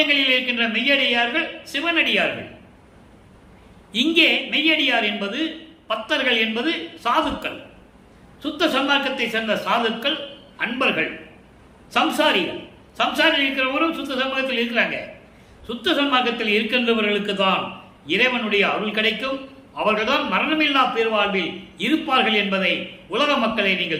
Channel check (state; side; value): identical; both; correlation 1.00